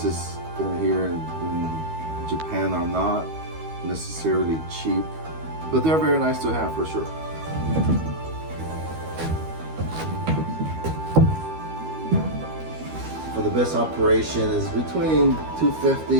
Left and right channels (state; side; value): late; left; 13 ms